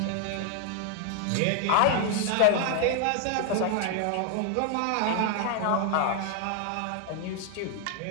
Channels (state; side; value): different; both; correlation 0.00